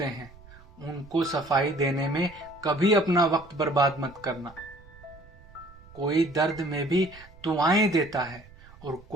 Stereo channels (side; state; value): right; noise; rumble, 22 dB below the sound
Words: हैं, उनको सफाई देने में कभी अपना वक्त बर्बाद मत करना। कोई दर्द में भी दुआएं देता है और